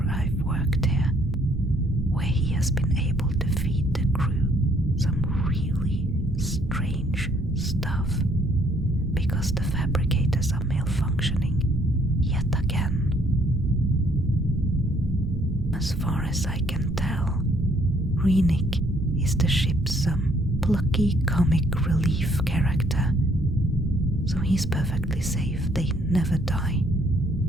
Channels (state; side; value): normal; both; correlation 0.65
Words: I've worked here where he has been able to feed the crew some really strange stuff because the fabricators are malfunctioning yet again. As far as I can tell, Renik is the ship's plucky comic relief character, so he's perfectly safe. They never die.